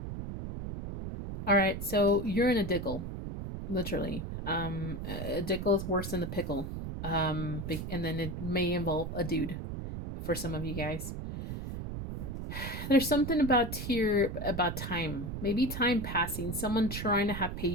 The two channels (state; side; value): noise; right; rumble, 6 dB below the sound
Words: alright, so you're in a diggle, literally. A diggle is worse than the pickle. And then it may involve a dude for some of you guys. There's something about here about time. Maybe time passing. Someone trying to have